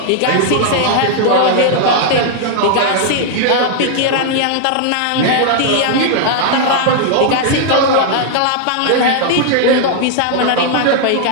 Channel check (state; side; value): different; both; correlation 0.00